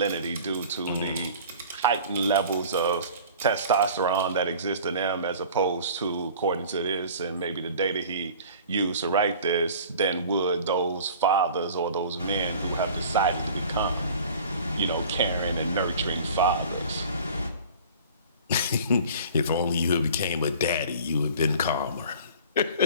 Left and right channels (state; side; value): inverted; both; correlation -0.44